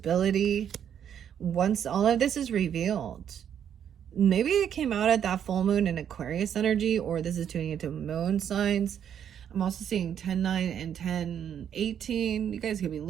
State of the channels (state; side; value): quieter; left; 9.0 dB